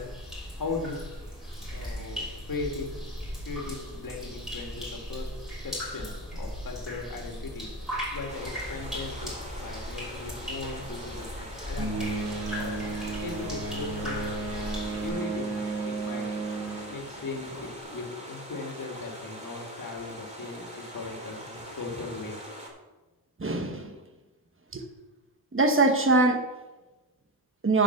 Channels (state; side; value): normal; both; correlation 0.20